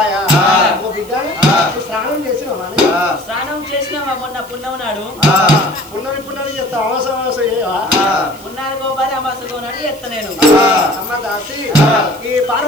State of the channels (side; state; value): right; noise; hiss, 21 dB below the sound